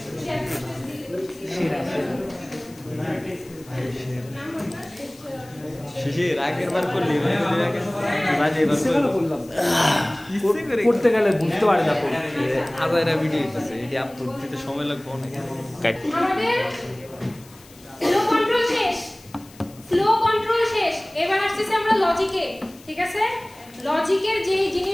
শিশির আগের বার করলি করতে গেলে বুঝতে পারে না আদায়রা ভিডিও হইতেছে, এটি আপলোড দিতে সময় লাগবে অনেক। আমাদের ফ্লো কন্ট্রোল শেষ, এবার আসছে আমরা লজিকে। ঠিক আছে, লজিকের যে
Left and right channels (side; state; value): left; noise; hiss, 24 dB below the sound